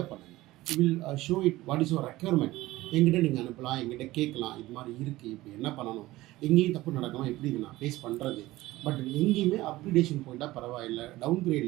பண்ணுங்கள். Will show it what is your requirement. எங்கிட்ட நீங்கள் அனுப்பலாம், எங்கிட்ட கேட்கலாம், இது மாதிரி இருக்குது, இப்போ என்ன பண்ணணும், எங்கேயும் தப்பு நடக்கலாம், எப்படி இது நான் ஃபேஸ் பண்ணுறது. பட் எங்கேயுமே அப்கிரேடேஷன் போயிட்டால் பரவாயில்லை, டவுன்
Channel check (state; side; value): quieter; left; 17.8 dB